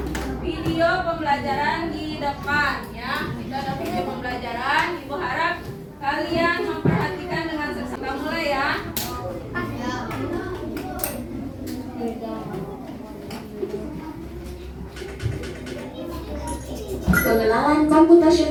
video pembelajaran di depan, ya. Kita ada video pembelajaran. Ibu harap kalian memperhatikan dengan seksama. Kita mulai, ya. Pengenalan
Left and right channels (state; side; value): identical; both; correlation 1.00